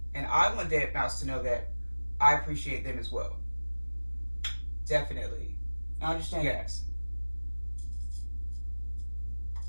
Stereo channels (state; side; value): inverted; both; correlation -1.00